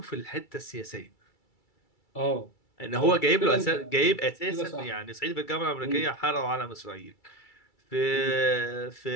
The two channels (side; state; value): right; late; 2.3 ms